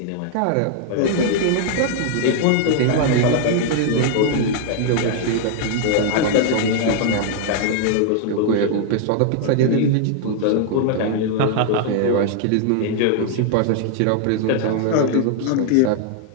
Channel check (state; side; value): different; both; correlation 0.00